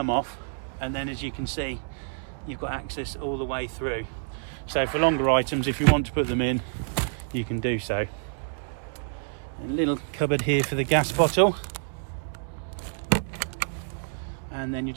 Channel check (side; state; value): left; silent; digital silence